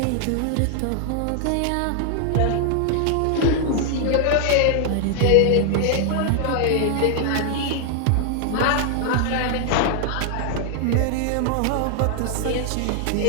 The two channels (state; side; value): different; both; correlation 0.00